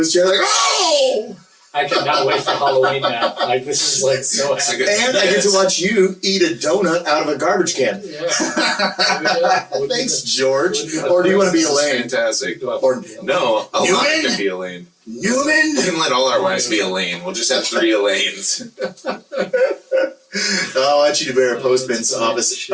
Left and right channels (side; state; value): both; identical; correlation 1.00